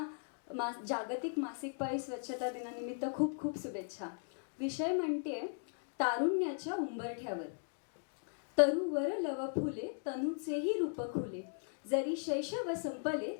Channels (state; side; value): silent; right; digital silence